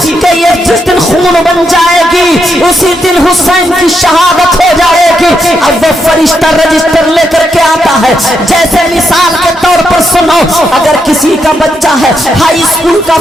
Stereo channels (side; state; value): both; normal; correlation 0.80